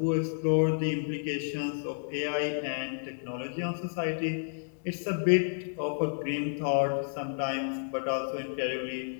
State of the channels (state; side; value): silent; right; digital silence